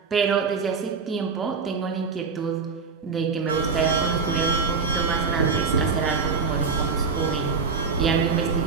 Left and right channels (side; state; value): left; quieter; 5.1 dB